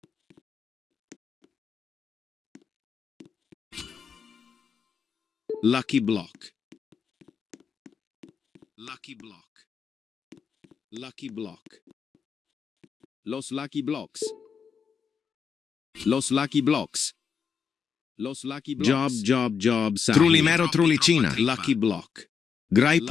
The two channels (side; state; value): right; quieter; 6.5 dB